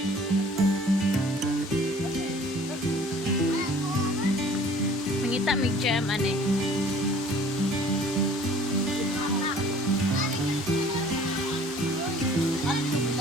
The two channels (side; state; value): both; normal; correlation 0.51